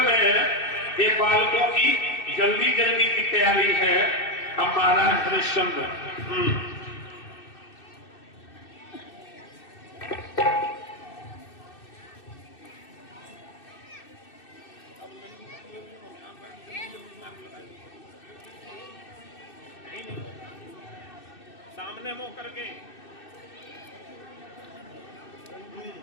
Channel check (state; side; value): late; right; 2.6 ms